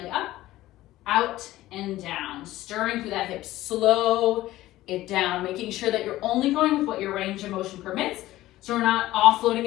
up, out and down, stirring through that hip. Slow it down, making sure that you're only going with what your range of motion permits. So we're not offloading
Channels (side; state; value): right; quieter; 15.9 dB